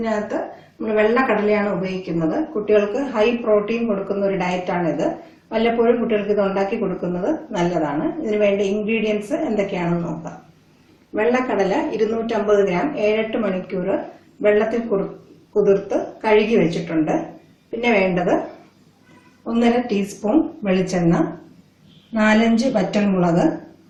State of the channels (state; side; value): identical; both; correlation 1.00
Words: നമ്മൾ വെള്ളക്കടലയാണ് ഉപയോഗിക്കുന്നത്. കുട്ടികൾക്ക് ഹൈ പ്രോട്ടീൻ കൊടുക്കുന്ന ഒരു ഡയറ്റാണിത്. വല്ലപ്പോഴും കുട്ടികൾക്ക് ഇത് ഉണ്ടാക്കി കൊടുക്കുന്നത് നല്ലതാണ്. ഇതിന് വേണ്ട ഇൻഗ്രീഡിയൻസ് എന്തൊക്കെയാണെന്ന് നോക്കാം. വെള്ളക്കടല 250 ഗ്രാം 7-8 മണിക്കൂർ വെള്ളത്തിൽ കുതിർത്ത് കഴുകി വെച്ചിട്ടുണ്ട്. പിന്നെ വേണ്ടത് 1.5 ടീസ്പൂൺ വെളിച്ചെണ്ണ, 4-5 വറ്റൽമുളക്,